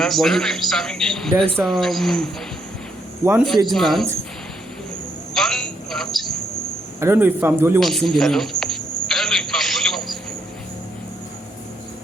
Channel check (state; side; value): normal; both; correlation 0.75